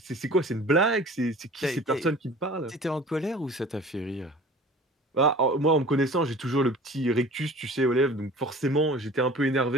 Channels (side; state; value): both; normal; correlation 0.43